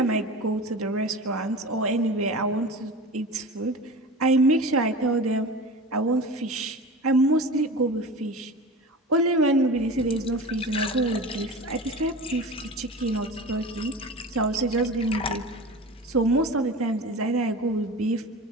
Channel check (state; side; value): normal; both; correlation 0.32